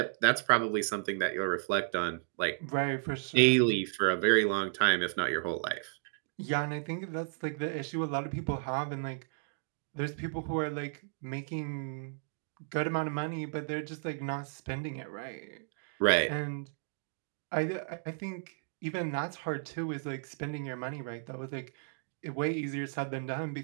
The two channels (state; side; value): silent; left; digital silence